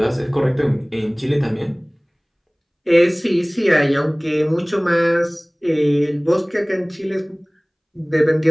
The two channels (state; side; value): identical; both; correlation 1.00